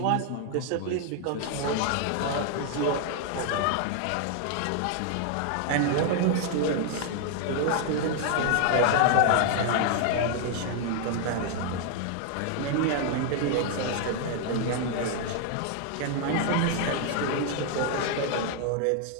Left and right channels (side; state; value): both; different; correlation 0.00